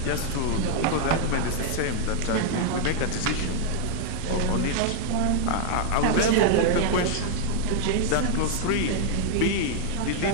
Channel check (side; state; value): both; different; correlation 0.00